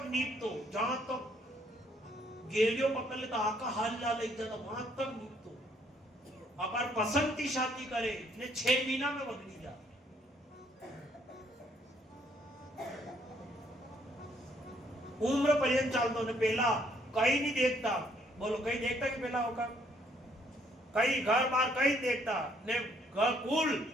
नीपतो जहां तक गेलियो पकड़ लेता आका हाल ला ले जाता वहां तक नीपतो। अगर पसंद की शादी करे ने 6 महीना में बदली जा। उम्र पर्यंत चालतो ने पहला कहीं नहीं देखता, बोलो कहीं देखता कि पहला होगा कहीं घर बार कहीं देखता ने घर कुल।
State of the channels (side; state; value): both; normal; correlation 0.67